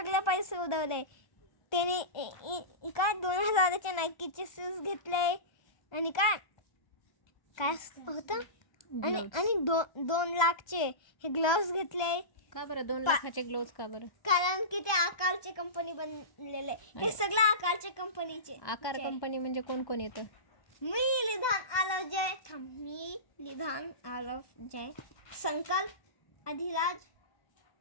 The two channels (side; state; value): right; late; 1.2 ms